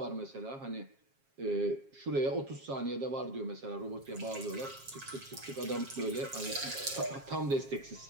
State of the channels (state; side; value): late; left; 7.4 ms